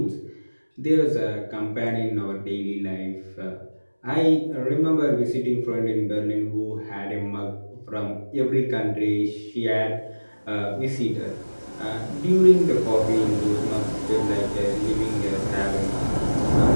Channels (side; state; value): both; inverted; correlation -1.00